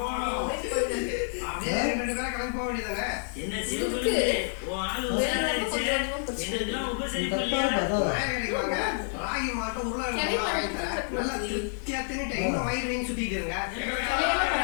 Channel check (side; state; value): right; silent; digital silence